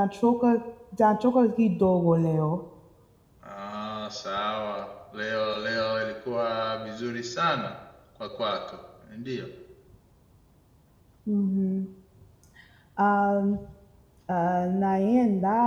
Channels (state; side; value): identical; both; correlation 1.00